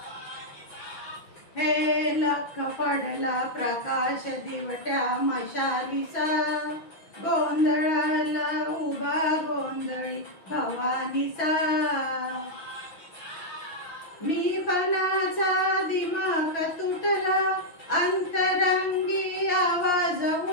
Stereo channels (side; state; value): right; late; 6.1 ms